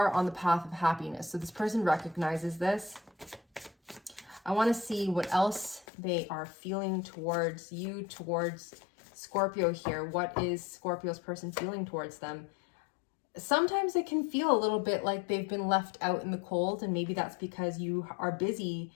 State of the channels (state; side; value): drops out; right; at 5.9 s